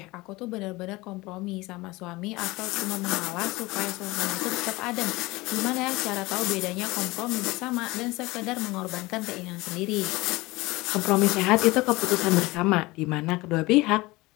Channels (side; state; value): right; quieter; 21.5 dB